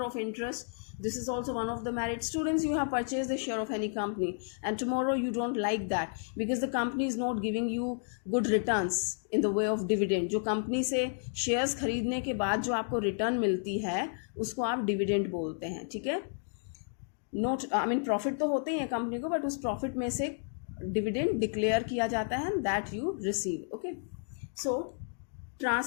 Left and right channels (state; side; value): silent; right; digital silence